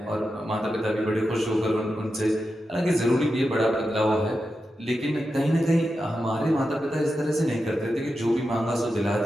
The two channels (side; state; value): both; normal; correlation 0.89